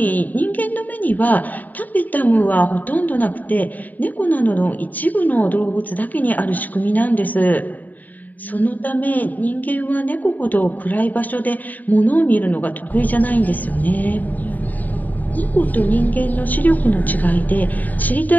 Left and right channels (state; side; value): late; right; 0.083 ms